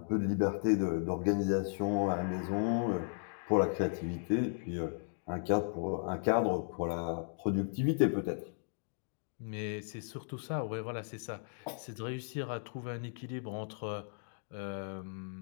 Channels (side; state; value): right; silent; digital silence